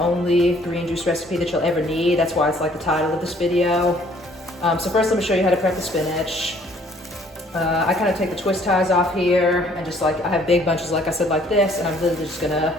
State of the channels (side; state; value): both; normal; correlation 0.59